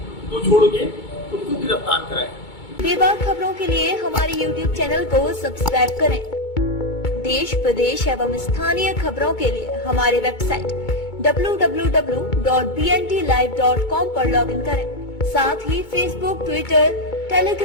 को छोड़ के उनको गिरफ्तार कराएं। बेबाक खबरों के लिए हमारे YouTube चैनल को सब्सक्राइब करें, देश प्रदेश एवं स्थानीय खबरों के लिए हमारे वेबसाइट www.bntlive.com पर लॉगिन करें। साथ ही Facebook, Twitter,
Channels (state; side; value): late; right; 2.2 ms